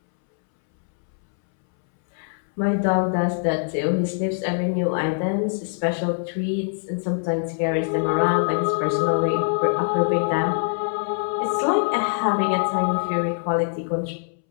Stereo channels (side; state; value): right; silent; 63 dB below the other